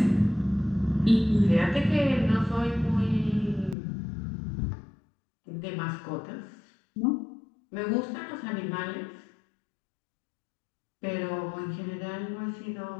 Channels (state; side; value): drops out; right; at 3.8 s